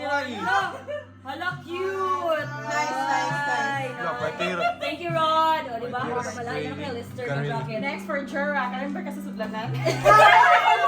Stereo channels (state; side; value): identical; both; correlation 1.00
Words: Hala, cute! Nice. Wala pa pero. Thank you, Rod! O, diba? Malayo na kayo, Lister ng jacket. Next for Jura, kalimber ka sa sudlanan.